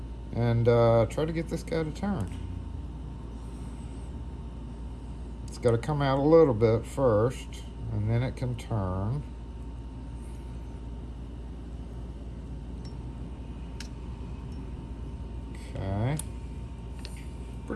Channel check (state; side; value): identical; both; correlation 1.00